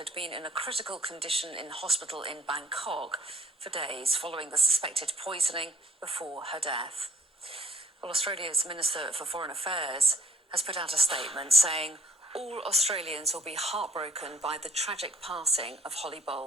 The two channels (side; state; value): both; normal; correlation 0.56